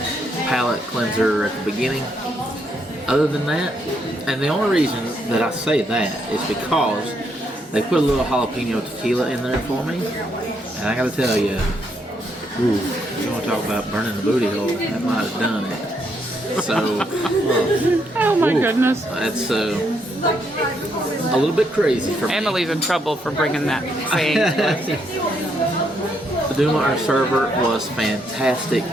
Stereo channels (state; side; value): normal; both; correlation 0.76